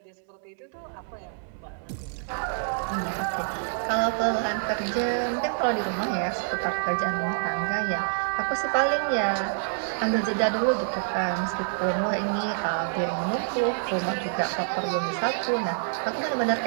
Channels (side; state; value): left; silent; digital silence